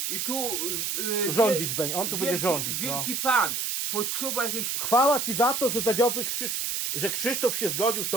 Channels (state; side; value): noise; right; hiss, 1 dB below the sound